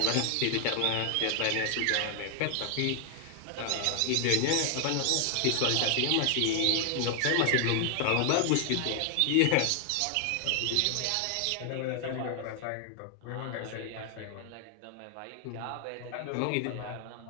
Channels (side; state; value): both; different; correlation 0.00